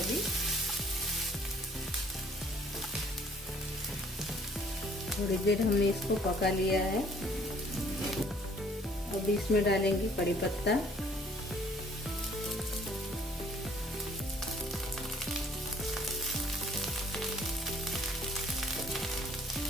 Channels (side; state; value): both; normal; correlation 0.58